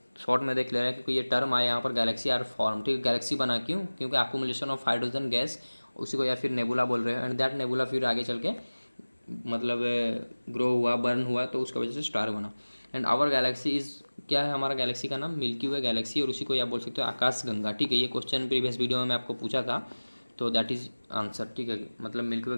शॉर्ट में देख ले रहे हैं, क्योंकि ये टर्म आया यहाँ पर गैलेक्सी आर फॉर्म, ठीक है। गैलेक्सी बना क्यों, क्योंकि अक्यूमुलेशन ऑफ हाइड्रोजन गैस, उसी को या फिर नेबुला बोल रहे हैं, एंड दैट नेबुला फिर आगे चल के मतलब ग्रो हुआ, बर्न हुआ, तो उसकी वजह से स्टार बना। एंड आवर गैलेक्सी इज़, क्या है हमारा गैलेक्सी का नाम, मिल्की वे गैलेक्सी, और उसी को आप बोल सकते हो आकाश गंगा, ठीक है। ये क्वेश्चन प्रीवियस वीडियो में मैं आपको पूछा था, तो दैट इज़ आंसर, ठीक है। मतलब मिल्की वे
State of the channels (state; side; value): inverted; both; correlation -1.00